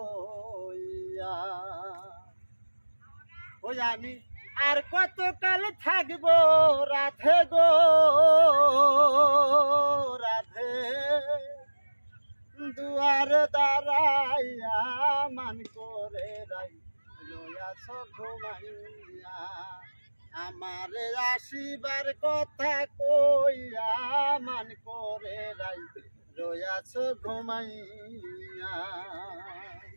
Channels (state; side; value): inverted; both; correlation -1.00